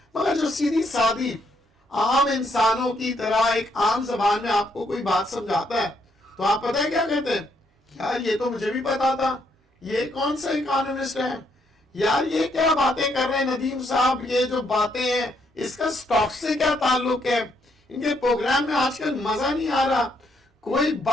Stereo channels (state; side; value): normal; both; correlation 0.73